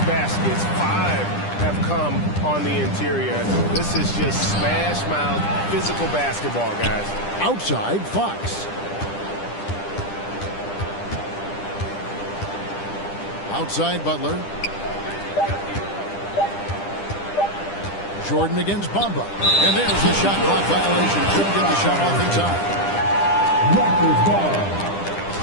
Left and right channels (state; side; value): late; right; 10 ms